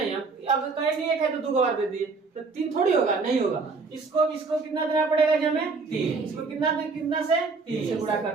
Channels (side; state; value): left; quieter; 4.3 dB